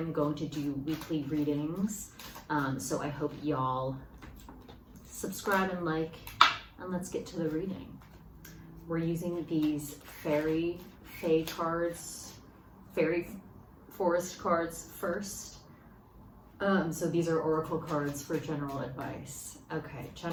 going to do weekly readings, so I hope y'all subscribe and like, and let's get to the reading. We're using these fairy cards, fairy forest cards first. So these are oracle cards for general advice. Okay,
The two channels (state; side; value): identical; both; correlation 1.00